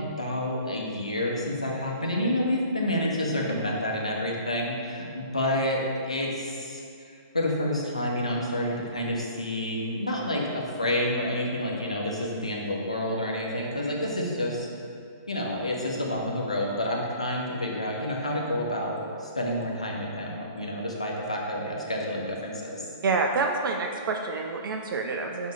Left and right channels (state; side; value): inverted; both; correlation -0.48